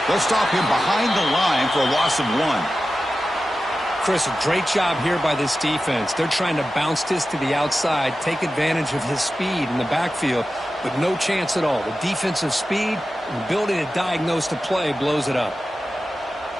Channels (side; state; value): both; normal; correlation 0.93